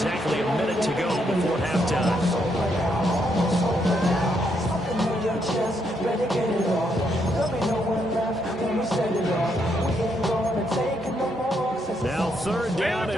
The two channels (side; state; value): both; normal; correlation 0.76